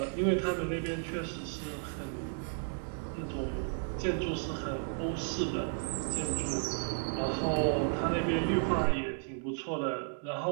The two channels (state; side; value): silent; left; digital silence